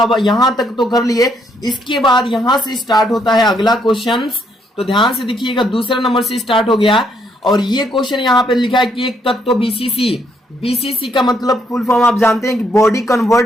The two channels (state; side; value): normal; both; correlation 0.72